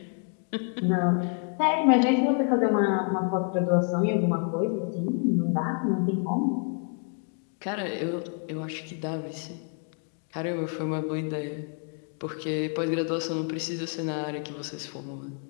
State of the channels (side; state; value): right; quieter; 38.3 dB